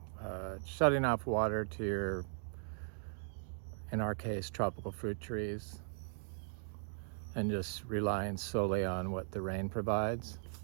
shutting off water to your, in our case, tropical fruit trees, and just relying solely on what the rain provides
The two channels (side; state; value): left; silent; digital silence